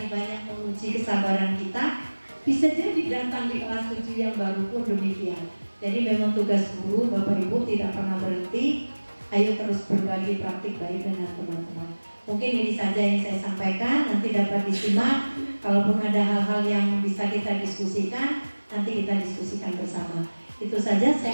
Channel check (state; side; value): inverted; both; correlation -1.00